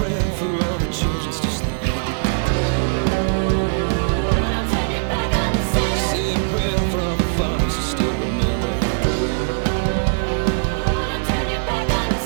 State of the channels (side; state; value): left; silent; digital silence